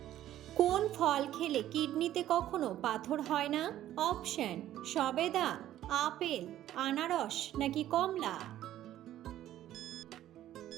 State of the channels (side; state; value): left; quieter; 12.8 dB